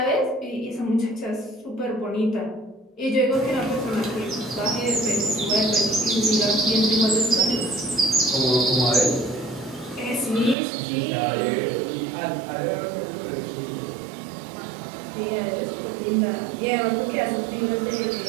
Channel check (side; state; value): left; drops out; at 10.6 s